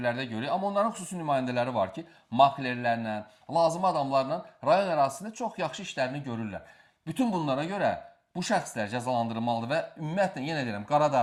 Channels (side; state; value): both; identical; correlation 1.00